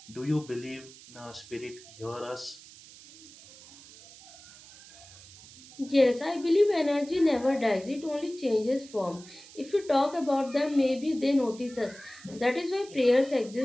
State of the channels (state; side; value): noise; right; hiss, 20 dB below the sound